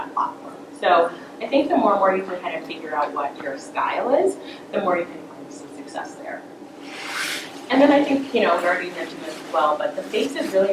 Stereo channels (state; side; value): identical; both; correlation 1.00